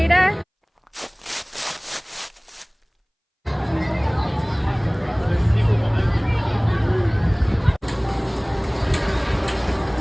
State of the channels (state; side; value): identical; both; correlation 1.00